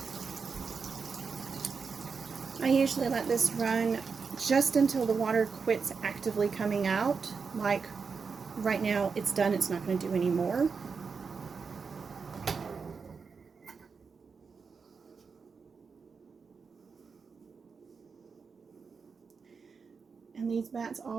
I usually let this run just until the water quits actively coming out. Like right now, it's done. It's not going to do any more. And these bats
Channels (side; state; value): left; quieter; 5.3 dB